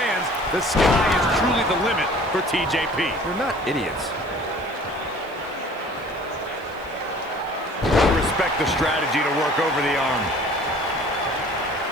The sky is truly the limit for TJP. They're not idiots. Respect the strategy to work over the arm.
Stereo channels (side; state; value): left; noise; hiss, 28 dB below the sound